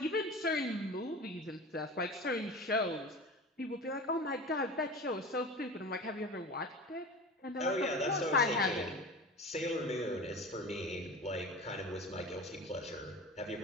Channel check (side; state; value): both; normal; correlation 0.33